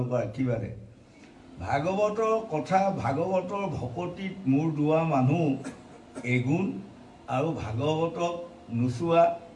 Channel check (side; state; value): both; identical; correlation 1.00